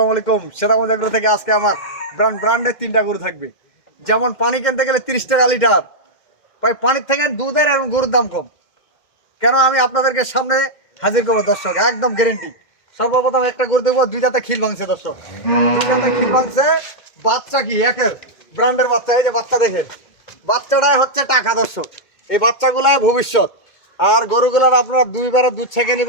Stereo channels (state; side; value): late; right; 2.1 ms